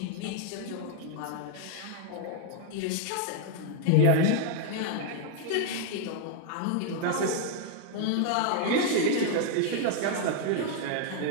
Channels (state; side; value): different; both; correlation 0.00